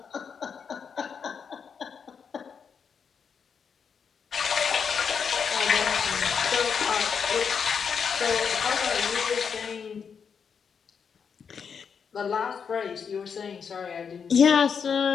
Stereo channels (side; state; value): right; quieter; 6.5 dB